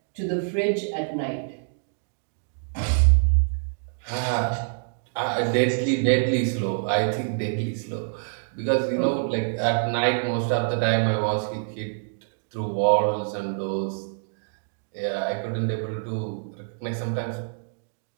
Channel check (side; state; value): left; silent; digital silence